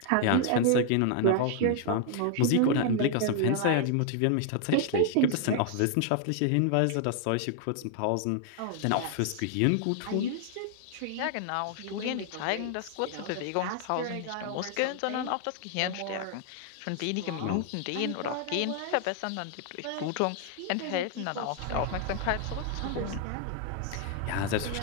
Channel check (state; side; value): different; both; correlation 0.00